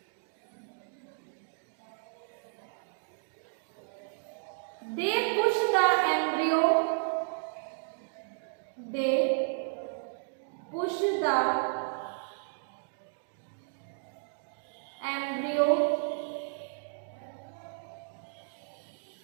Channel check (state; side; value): silent; left; digital silence